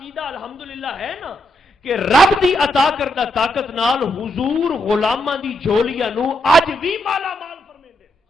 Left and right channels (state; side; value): normal; both; correlation 0.80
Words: الحمدللہ ہے نا کہ رب دی عطا کردہ طاقت نال حضور غلاماں دی جھولیاں نو اج بھی مالا مال فرمیندے۔